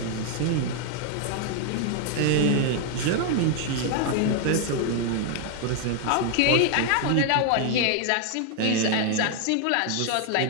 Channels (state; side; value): different; both; correlation 0.00